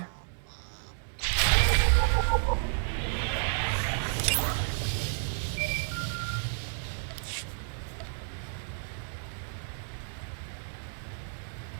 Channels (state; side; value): silent; left; 57 dB below the other